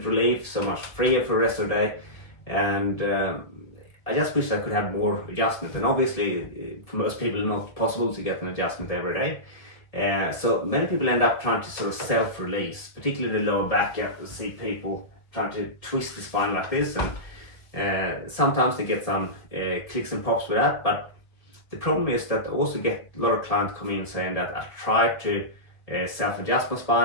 relief, so much freer for the rest of the day, and I just wish I could have more adjustment. And obviously, for most people, it's not possible to get an adjustment every day. So many people end up trying to sort of self-release, particularly the lower back. You see people trying to twist the spine like this, and sometimes they get some clicks and pops with that. But the problem is that I also get a lot of clients come in saying that I tried to self-adjust my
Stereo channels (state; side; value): late; right; 1.7 ms